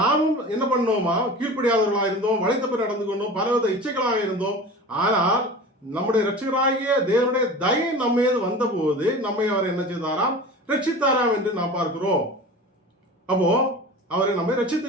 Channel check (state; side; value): normal; both; correlation 0.35